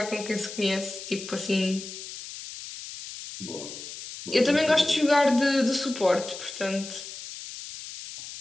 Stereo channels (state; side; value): noise; left; hiss, 11 dB below the sound